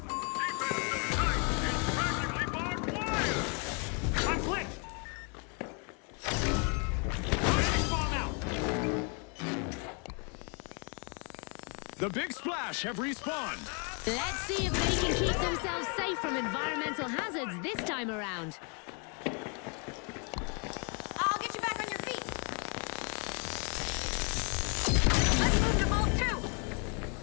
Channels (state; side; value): quieter; right; 36.3 dB